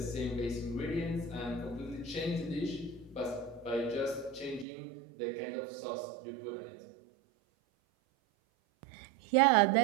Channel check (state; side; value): drops out; left; at 4.7 s